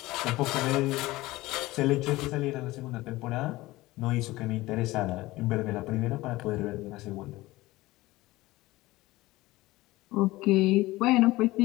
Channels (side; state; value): right; quieter; 18.9 dB